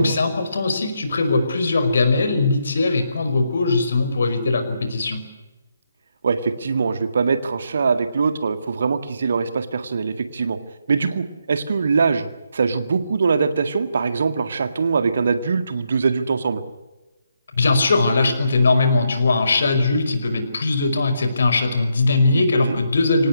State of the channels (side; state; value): both; inverted; correlation -0.79